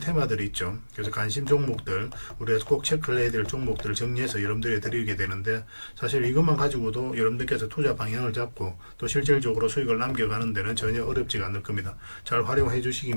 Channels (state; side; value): inverted; both; correlation -1.00